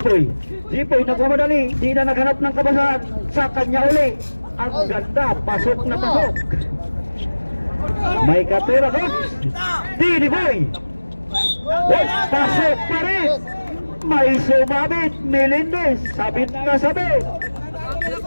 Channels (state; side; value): inverted; both; correlation -1.00